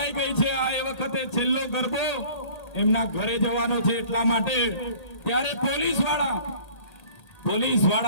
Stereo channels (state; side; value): late; right; 1.8 ms